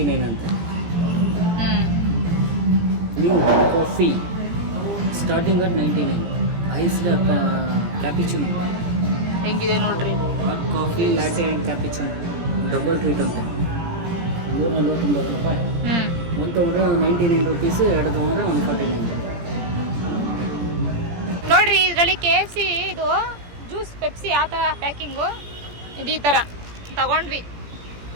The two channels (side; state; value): left; late; 17 ms